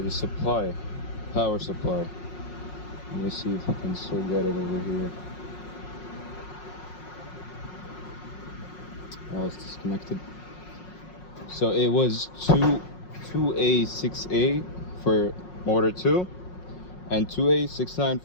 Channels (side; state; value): right; late; 5.5 ms